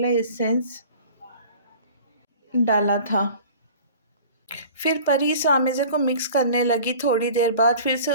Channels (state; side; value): inverted; both; correlation -0.44